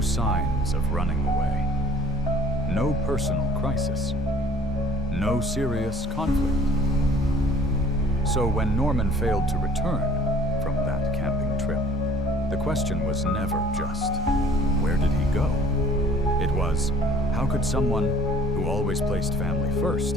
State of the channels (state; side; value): normal; both; correlation 0.54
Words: signs of running away, no personal crisis, no serious conflict. So when Norman failed to return from that camping trip, the question was never just, where did he go? It was, how could someone who always placed family first,